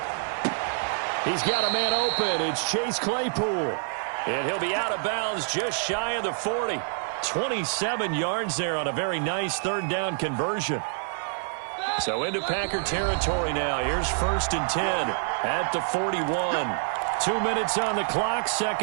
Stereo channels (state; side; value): silent; left; digital silence